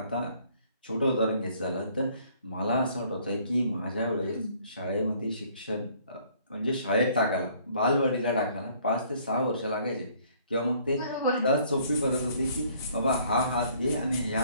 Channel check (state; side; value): inverted; both; correlation -0.60